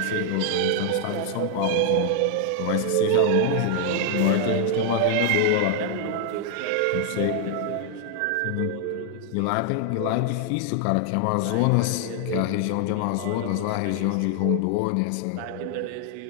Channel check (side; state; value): both; different; correlation 0.00